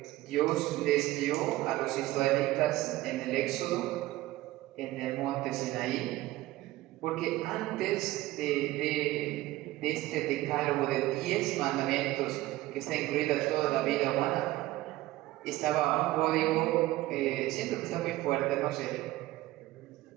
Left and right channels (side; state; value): left; quieter; 17.3 dB